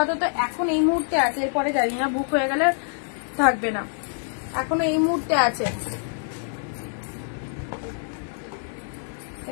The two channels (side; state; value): right; silent; 61 dB below the other